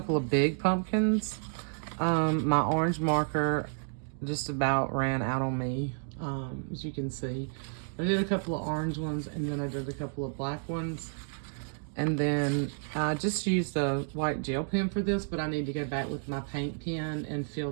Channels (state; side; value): silent; left; digital silence